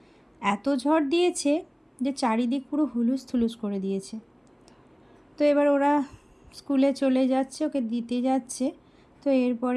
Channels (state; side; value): identical; both; correlation 1.00